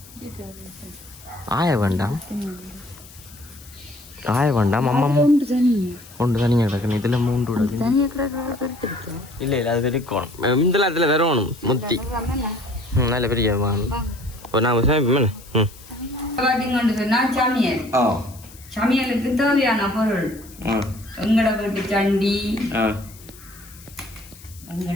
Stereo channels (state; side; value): noise; left; hiss, 21 dB below the sound